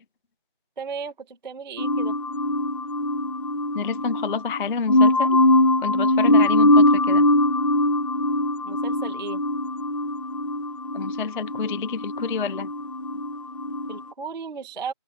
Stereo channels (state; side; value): inverted; both; correlation -0.38